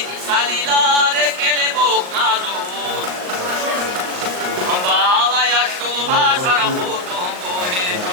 Salilare kelebok nazur Bala yaşlı başara kurdum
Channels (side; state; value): left; late; 39 ms